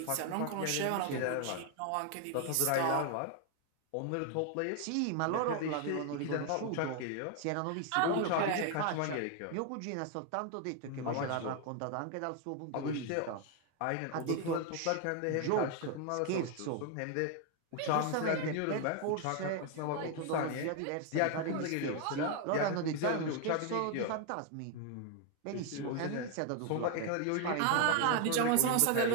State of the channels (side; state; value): both; different; correlation 0.00